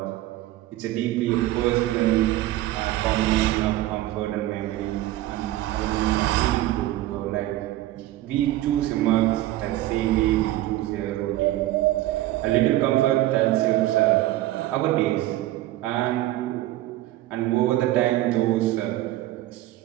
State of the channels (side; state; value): left; quieter; 15.7 dB